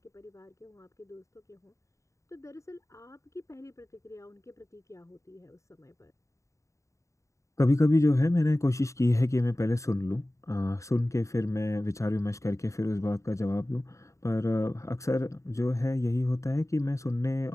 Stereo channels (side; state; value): right; late; 0.15 ms